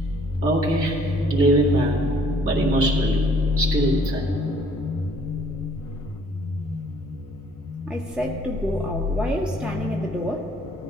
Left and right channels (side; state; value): both; normal; correlation 0.60